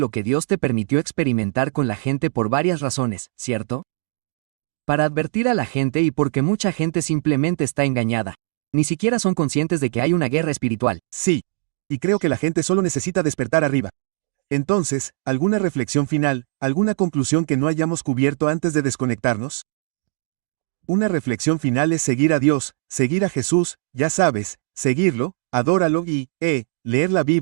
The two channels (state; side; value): silent; left; 62 dB below the other